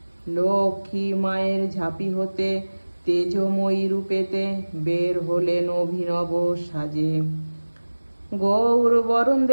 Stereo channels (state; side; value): inverted; both; correlation -1.00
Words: লক্ষ্মী মায়ের ঝাঁপি হতে তেজময়ী রূপেতে বের হলেন অভিনব সাজে। গৌর বরণ